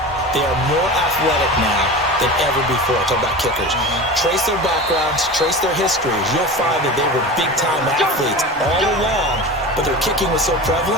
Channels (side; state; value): both; normal; correlation 0.31